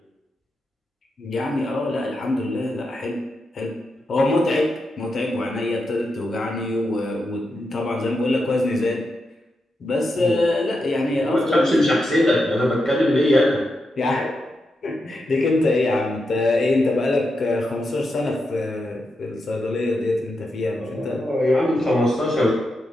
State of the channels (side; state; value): both; normal; correlation 0.86